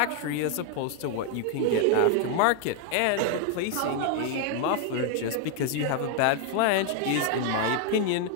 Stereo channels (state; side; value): different; both; correlation 0.00